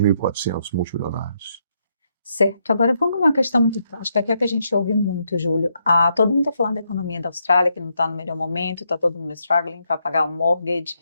multimilionários. Certo, agora vamos numa questão muito prática, que é o que a gente ouve muito, Júlio. Todo mundo está falando da economia da Austrália, que não está no melhor momento, está todo mundo struggling para pagar o mortgage.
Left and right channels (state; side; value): inverted; both; correlation -0.78